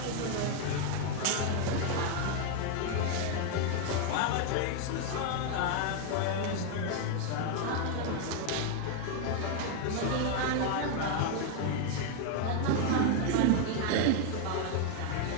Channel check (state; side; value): different; both; correlation 0.00